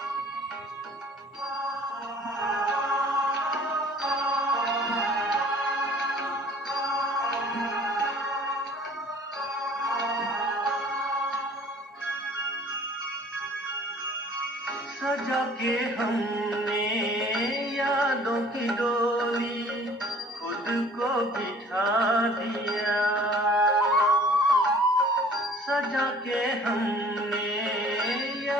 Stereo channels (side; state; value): both; normal; correlation 0.51